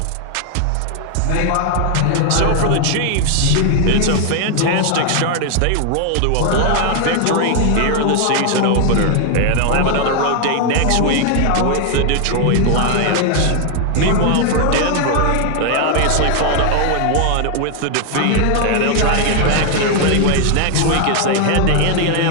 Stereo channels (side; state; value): both; different; correlation 0.01